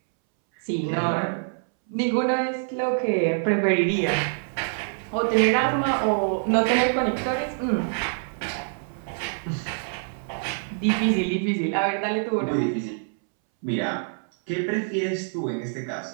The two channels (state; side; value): silent; left; 61 dB below the other